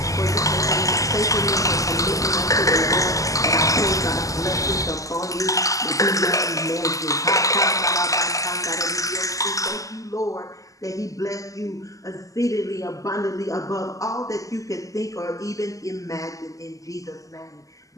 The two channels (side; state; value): right; late; 0.16 ms